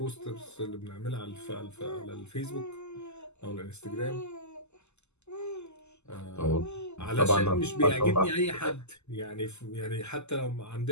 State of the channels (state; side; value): late; right; 0.82 ms